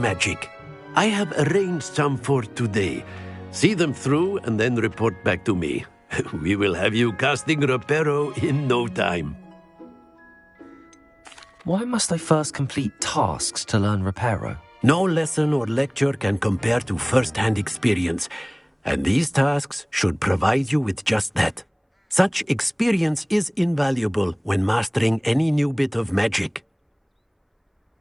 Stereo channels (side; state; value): both; identical; correlation 1.00